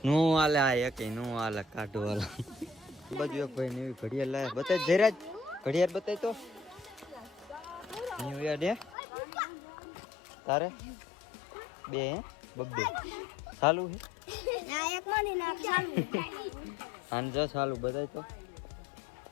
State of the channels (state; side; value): drops out; right; at 9.0 s